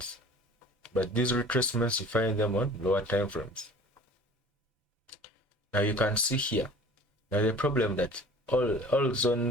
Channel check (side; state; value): both; normal; correlation 0.45